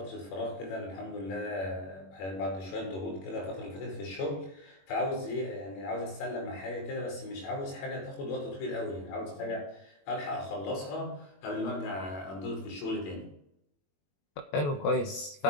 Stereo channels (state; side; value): late; right; 21 ms